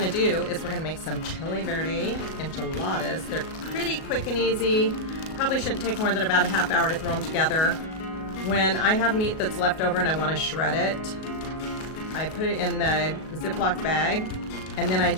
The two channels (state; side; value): late; right; 37 ms